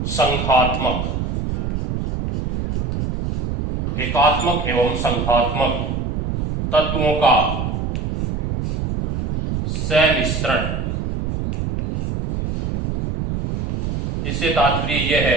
संघात्मक, एकात्मक एवं संघात्मक तत्वों का सम्मिश्रण। इससे तात्पर्य यह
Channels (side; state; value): right; noise; rumble, 2 dB below the sound